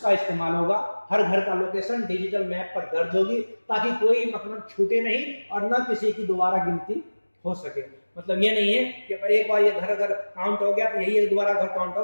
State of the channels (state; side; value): inverted; both; correlation -1.00